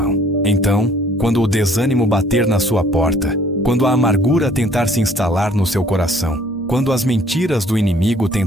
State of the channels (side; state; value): both; normal; correlation 0.58